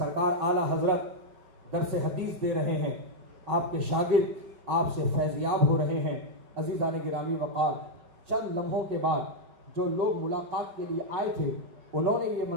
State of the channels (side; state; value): left; late; 5.4 ms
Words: आला हजरत दरस हदीस दे रहे हैं, आपके शागिर्द आपसे फैज़याब हो रहे हैं। अजीज़ान गिरामी वक़ार, चंद लम्हों के बाद जो लोग मुलाकात के लिए आए थे उन्होंने ये